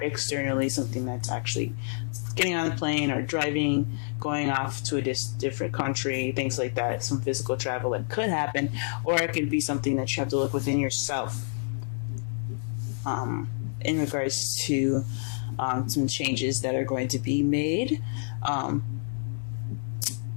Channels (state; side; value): silent; right; 56 dB below the other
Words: externally, something that's actually getting on a plane or driving, going off to a different country, things like that, some physical travel that could happen, or it could be something that you have to look within yourself in regards to some changes that are going to be made.